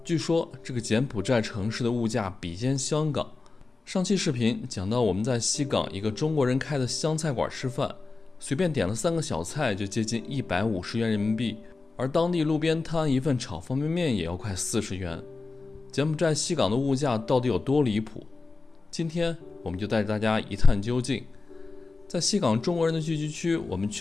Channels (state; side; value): quieter; right; 3.8 dB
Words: 据说这个柬埔寨城市的物价比肩香港。上期视频讲到我们在西港一个中国人开的湘菜馆吃饭，随便点了3个小菜就接近150元人民币，而当地路边摊一份炒方便面也要快40元。柬埔寨西港的物价到底有多离谱？今天我们就带着大家一探究竟。在西港中国人的聚集区，我们